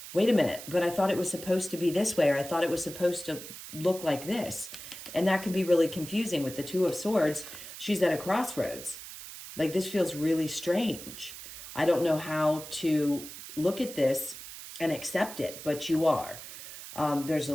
wait a minute, but I thought it was supposed to be this way, or I thought it was supposed to look like this. And that can be really confusing with the Two of Swords. She's at a crossroads. Like, this feels really strange. I don't know how to look at this and accept it, but you are. There's a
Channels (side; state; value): right; noise; hiss, 12 dB below the sound